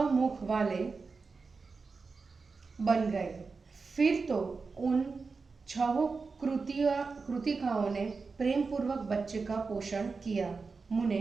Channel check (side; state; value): left; quieter; 4.5 dB